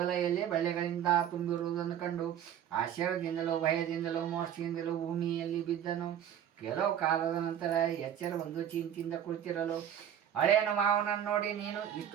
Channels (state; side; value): quieter; left; 9.9 dB